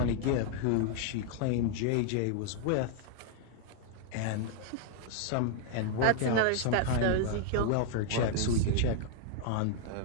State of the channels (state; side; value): different; both; correlation -0.01